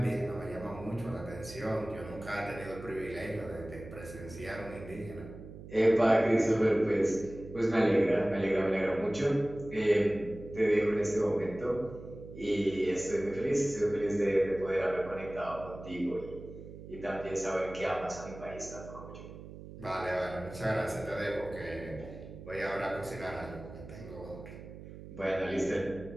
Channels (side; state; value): right; noise; hum, 14 dB below the sound